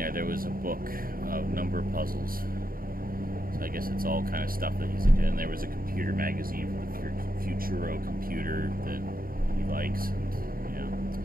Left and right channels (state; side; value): late; left; 0.42 ms